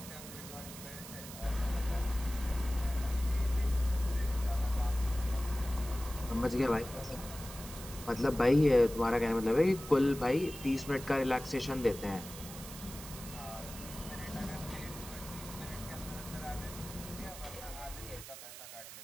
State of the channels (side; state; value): right; noise; hiss, 13 dB below the sound